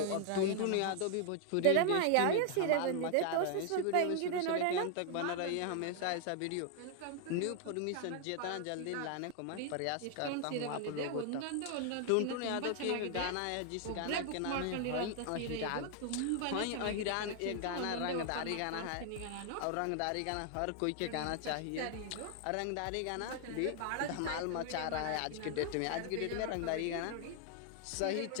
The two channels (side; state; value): both; different; correlation 0.00